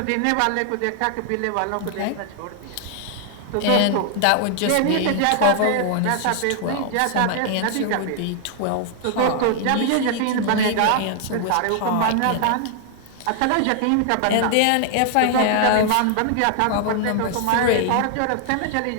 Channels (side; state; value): both; different; correlation 0.00